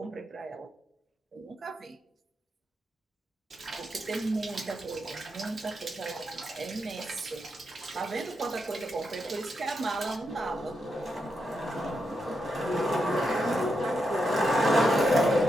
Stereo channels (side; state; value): both; normal; correlation 0.84